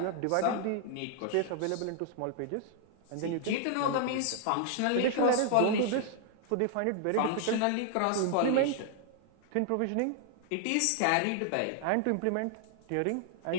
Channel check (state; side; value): different; both; correlation 0.00